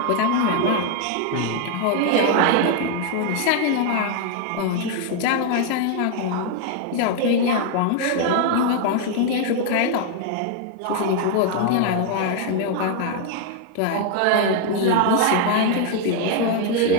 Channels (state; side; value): different; both; correlation 0.00